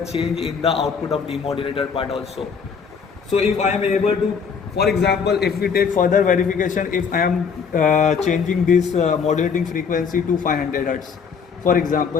in the output of demodulator part also. So if I am able to, for example, if we take further verification, if I am changing this modulating frequency to 500 Hz. For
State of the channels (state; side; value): quieter; right; 6.1 dB